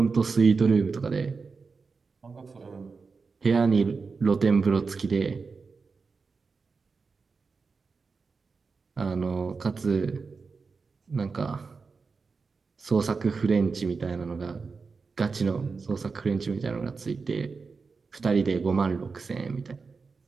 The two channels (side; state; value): left; quieter; 4.7 dB